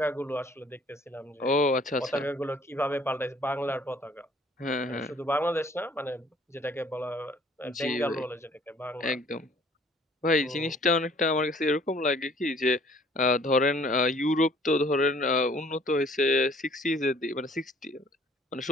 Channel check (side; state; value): both; normal; correlation 0.57